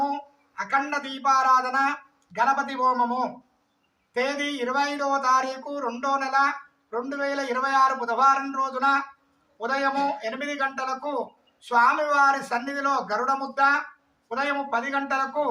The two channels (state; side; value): identical; both; correlation 1.00